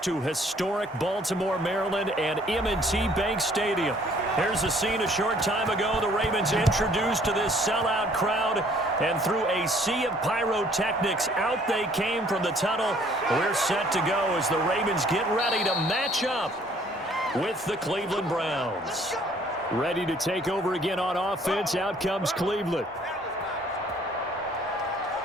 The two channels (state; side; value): normal; both; correlation 0.59